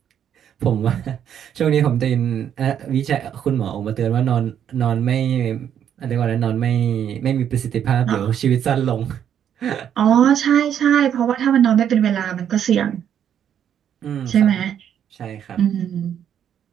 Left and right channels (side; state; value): left; quieter; 9.2 dB